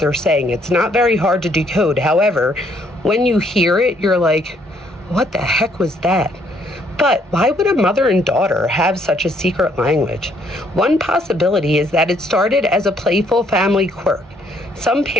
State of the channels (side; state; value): both; normal; correlation 0.68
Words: saying. It's not very hard to decode. However, when you hear it, you're like, what the heck was that? But why would a mother and daughter have such a secret language? One possibility is that it started as a playful family quirk. Some